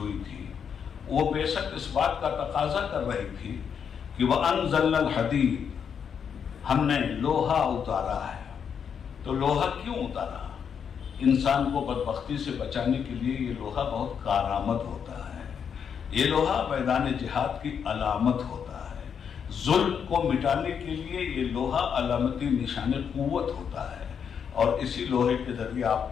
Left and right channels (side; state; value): right; quieter; 7.3 dB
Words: تھی وہ بعثت اس بات کا تقاضا کر رہی تھی کہ وَأَنزَلْنَا الْحَدِيدَ، ہم نے لوہا اتارا ہے. تو لوہا کیوں اتارا؟ انسان کو بدبختی سے بچانے کے لیے یہ لوہا بہت کارآمد ہوتا ہے. یہ لوہا میدان جہاد کی علامت ہوتا ہے. ظلم کو مٹانے کے لیے یہ لوہا علامتی نشان قوت ہوتا ہے. اور اسی لوہے کے ذریعے